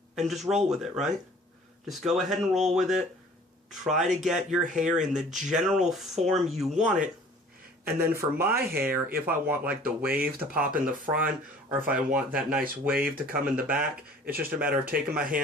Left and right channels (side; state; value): both; normal; correlation 0.50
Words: and just roll with it, right? Just go ahead and roll with it. Try to get your hair in the general form you want it. And then for my hair, if I want like the wave to pop in the front, or if I want that nice wave to come in the back, it's just a matter of taking my